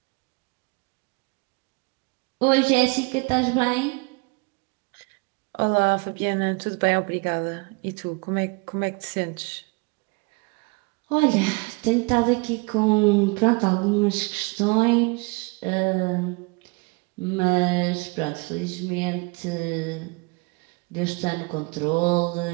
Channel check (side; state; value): left; quieter; 29.1 dB